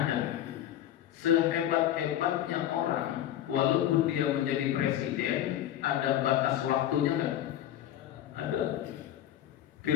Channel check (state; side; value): quieter; right; 11.9 dB